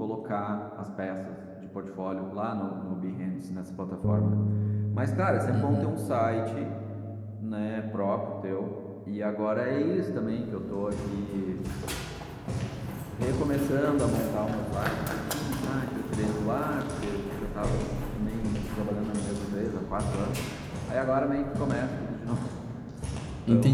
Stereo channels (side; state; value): both; identical; correlation 1.00